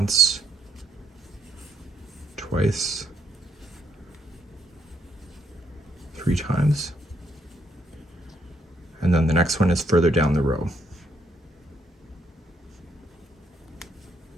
twice, 3 times. And then the next one is further down the row.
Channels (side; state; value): both; normal; correlation 0.74